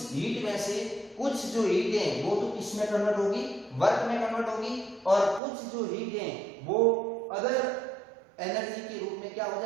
हीट में से कुछ जो हीट है वो तो किस में कन्वर्ट होगी, वर्क में कन्वर्ट होगी, और कुछ जो हीट है वो अदर एनर्जी के रूप में क्या हो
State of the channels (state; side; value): drops out; left; at 5.4 s